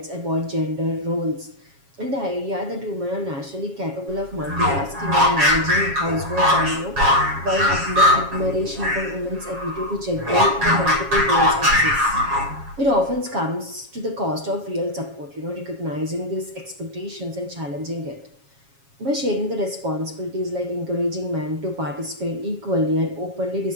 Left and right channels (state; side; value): late; left; 7.3 ms